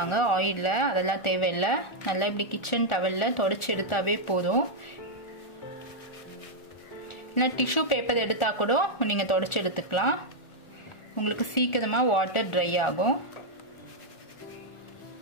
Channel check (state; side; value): late; right; 1.4 ms